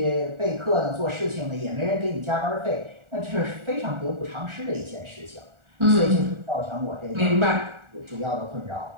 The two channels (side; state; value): left; late; 1.4 ms